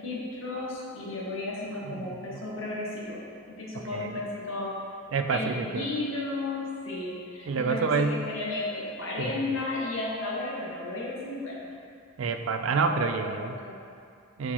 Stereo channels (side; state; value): both; normal; correlation 0.16